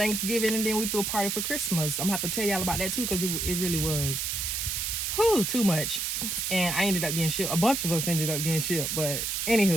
and then we threw a party for Christmas. I'm gonna have to tell y'all about that too, because it really was too much. And I ended up getting shipped. A bunch of us ended up getting shipped, but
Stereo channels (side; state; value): right; noise; hiss, 1 dB below the sound